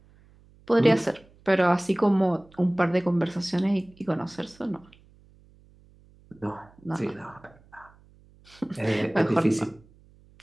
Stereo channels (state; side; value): noise; right; hum, 28 dB below the sound